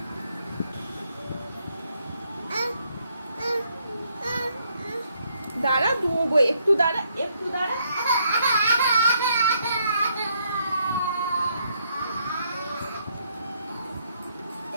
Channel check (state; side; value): inverted; both; correlation -0.72